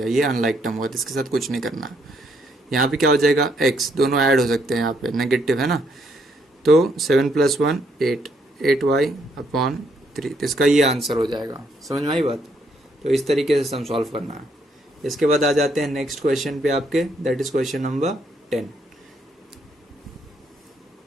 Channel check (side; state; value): both; normal; correlation 0.72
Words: ये अनलाइक टर्म हुआ, तो इसके साथ कुछ नहीं करना। यहाँ पे क्या हो जाएगा, x दोनों ऐड हो सकते हैं, यहाँ पे नेगेटिव है ना, तो 7 प्लस 1 8y अपॉन 3, तो इसका ये आंसर हो जाएगा। समझ में आई बात? तो इस तरीके से हम सॉल्व करना है। इसके बाद आ जाते हैं नेक्स्ट क्वेश्चन पे आपके, that is question number 10।